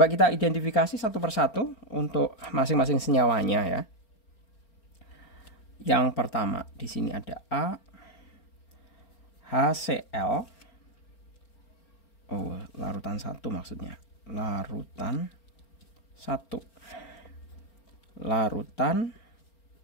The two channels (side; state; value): right; late; 4.4 ms